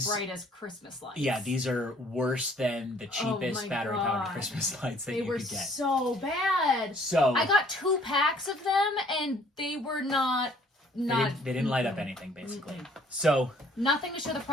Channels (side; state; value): both; normal; correlation 0.59